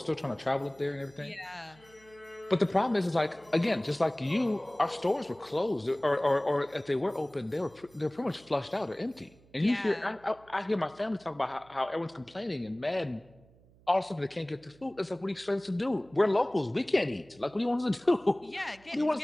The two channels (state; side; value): noise; right; hum, 28 dB below the sound